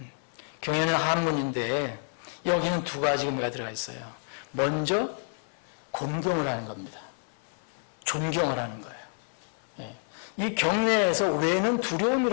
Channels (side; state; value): right; silent; 58 dB below the other